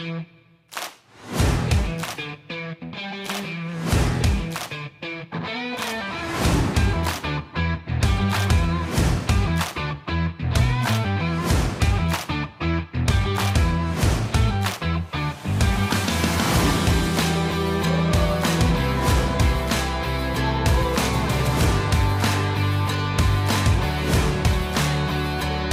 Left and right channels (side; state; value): both; identical; correlation 1.00